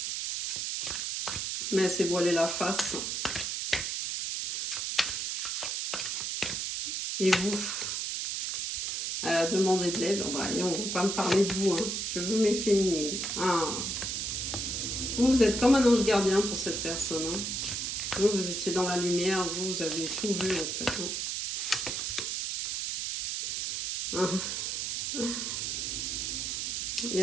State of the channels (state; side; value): noise; right; hiss, 2 dB below the sound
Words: Mais elle s'est voilée la face. Et vous, elle a demandé de l'aide. Oh, bah, on ne va pas me parler de vous. Hein. Je veux mes féminines. Ah. Vous êtes comme un ange gardien pour cette personne. Hein. Vous étiez dans la lumière. Vous avez tout vu en fait. Hein. Ah. Il y